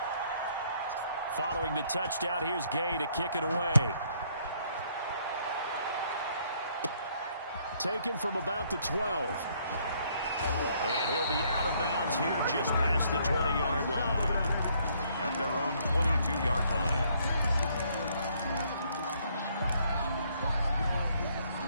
Following the touchdown, here's Gay to kick it away. Taken from about the 12. And he'll be out of bounds here just past the 20-yard line. At their own 22-yard line.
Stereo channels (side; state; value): both; inverted; correlation -0.67